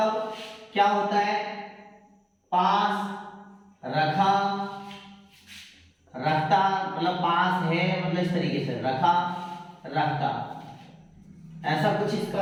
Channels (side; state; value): both; identical; correlation 1.00